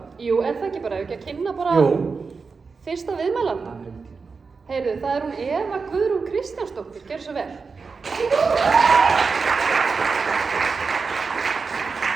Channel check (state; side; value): quieter; left; 4.8 dB